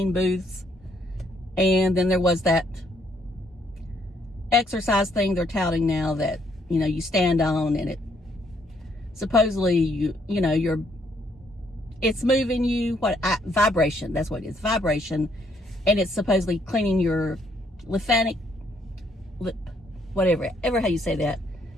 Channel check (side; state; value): both; normal; correlation 0.70